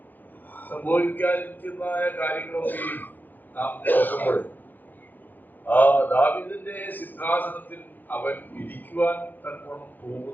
സംഭവിക്കാതിരിക്കുന്നതായ കാര്യങ്ങളൊക്കെയും നാം നോക്കുമ്പോൾ ദാവീദിന്റെ സിംഹാസനത്തിൽ അവൻ ഇരിക്കുവാൻ തക്കവണ്ണം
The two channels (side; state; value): right; late; 0.086 ms